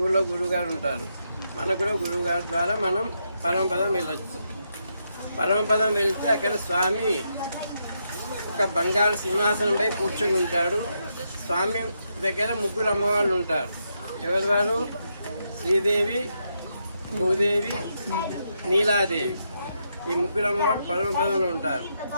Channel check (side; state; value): both; inverted; correlation -0.81